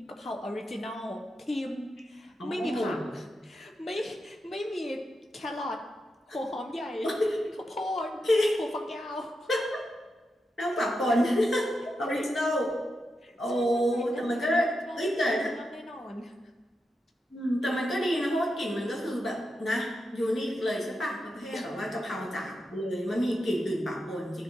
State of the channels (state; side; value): normal; both; correlation 0.87